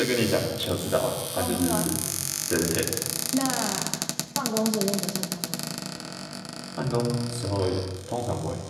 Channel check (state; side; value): identical; both; correlation 1.00